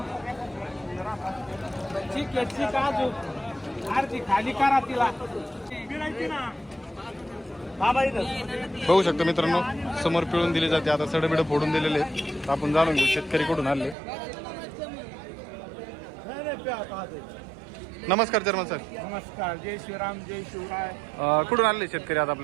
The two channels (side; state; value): left; drops out; at 14.0 s